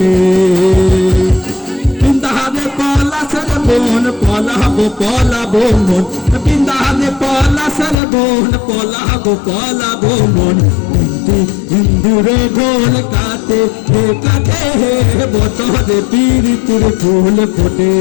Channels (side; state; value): right; drops out; at 8.0 s